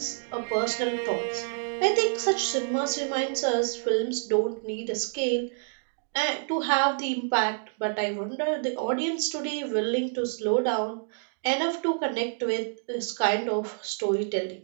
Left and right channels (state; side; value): silent; left; digital silence